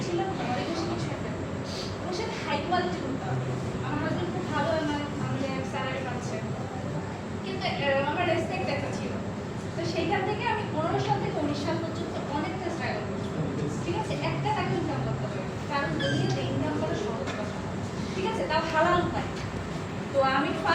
ছিল ঘরে বসে কিছু একটা এবং সেটা হাই কোয়ালিটি করতে হবে। আমার হাজবেন্ড খুব ভালো আমাদের স্যালারি পাচ্ছে, কিন্তু আমার রেসপেক্ট একটা ছিল। তো সেইখান থেকে আমি 15 সাল থেকে 19 সাল পর্যন্ত অনেকটা স্ট্রাগল করছি। ঠিক আছে, একটা টাকা ইনকাম করতে হবে, কারণ দুনিয়াতে ইনকাম করা সহজ কথা, ঠিক আছে, তাও হালাল উপায়। তো আমি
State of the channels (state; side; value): identical; both; correlation 1.00